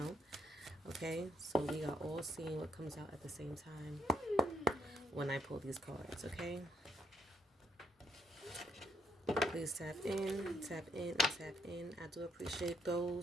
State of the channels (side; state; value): both; normal; correlation 0.74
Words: Okay? So we are all seeing what comes out at the same time when I pull these cards. Okay? Please tap in, and tap in. I do appreciate